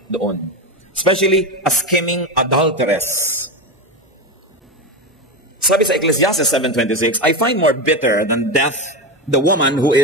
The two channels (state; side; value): normal; both; correlation 0.16